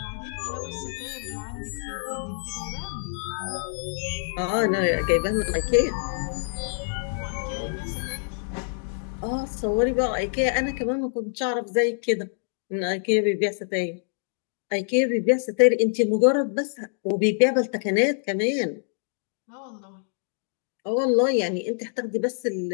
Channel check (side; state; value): right; silent; digital silence